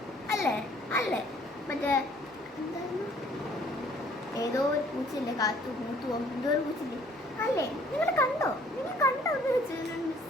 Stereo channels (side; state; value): both; normal; correlation 0.58